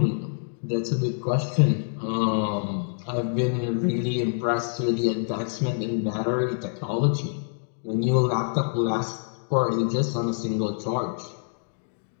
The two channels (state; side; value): silent; right; digital silence